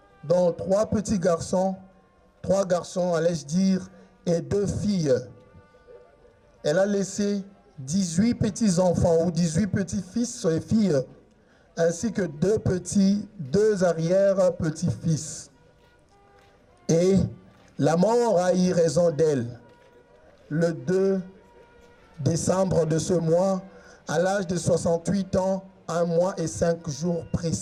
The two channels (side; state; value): both; identical; correlation 1.00